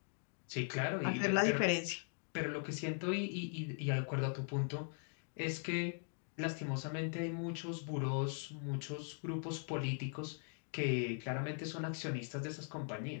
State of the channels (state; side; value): silent; right; 51 dB below the other